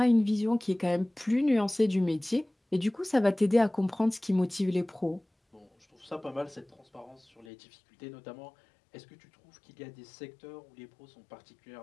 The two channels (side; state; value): right; drops out; at 7.5 s